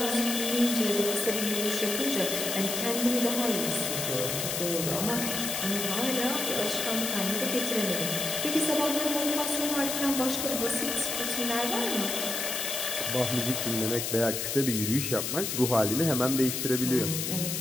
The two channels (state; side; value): noise; left; hiss, 2 dB below the sound